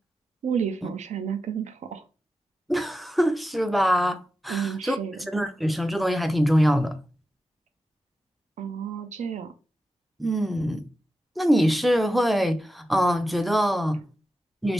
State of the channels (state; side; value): normal; both; correlation 0.91